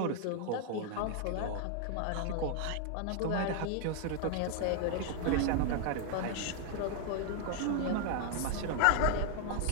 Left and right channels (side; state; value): both; different; correlation 0.00